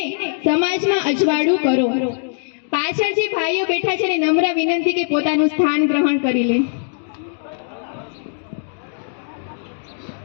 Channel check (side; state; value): right; silent; digital silence